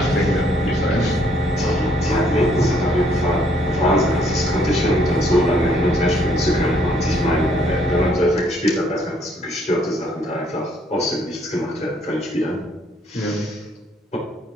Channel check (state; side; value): normal; both; correlation 0.67